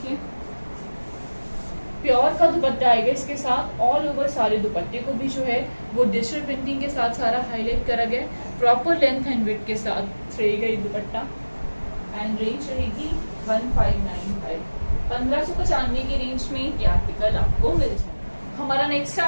प्योर का दुपट्टा आएगा इसके साथ। ऑल ओवर सारे दुपट्टे को भी जो है वो डिजिटल प्रिंटिंग के साथ सारा हाईलाइट करा गया। प्रॉपर लेंथ एंड विड्थ के साथ रहेगा ये दुपट्टा एंड रेंज रहेगी 1595। 1595 की रेंज में ये आर्टिकल आपको मिल जाएगा। हमारा नेक्स्ट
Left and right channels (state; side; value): inverted; both; correlation -1.00